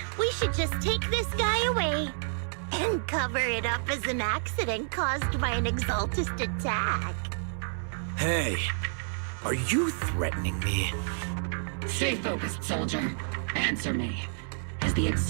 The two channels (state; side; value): silent; left; digital silence